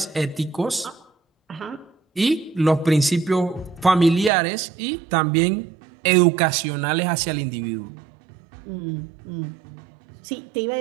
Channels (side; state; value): left; drops out; at 4.3 s